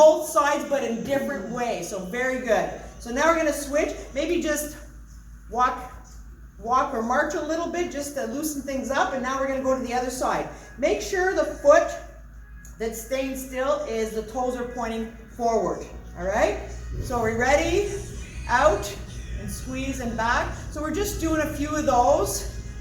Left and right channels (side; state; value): both; identical; correlation 1.00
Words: sides, but in different ways. So very good. So now we're going to switch. Maybe just walk or march a little bit just to loosen things up. And now we're going to go to the other side. Make sure the foot that's staying still is the toes are pointing forward. All right? So we're ready? Out and squeeze and back. So we're just doing a few of those